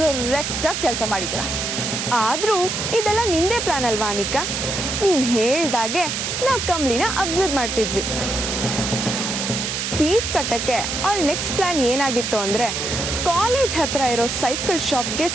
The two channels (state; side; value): noise; right; hiss, 2 dB below the sound